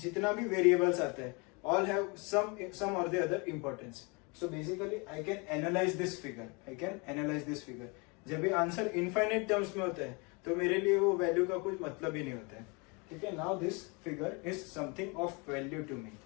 जितना भी वेरिएबल्स आते हैं all have some or the other importance. So basically I can analyze this figure. जब ये आंसर इनफाइनाइट टर्म्स में होता है तो मेरे लिए वो वैल्यू का कुछ मतलब ही नहीं होता है. ठीक है, now this figure is something of value to me.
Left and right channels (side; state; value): right; quieter; 30.2 dB